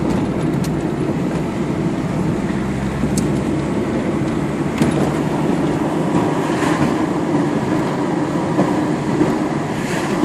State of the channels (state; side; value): identical; both; correlation 1.00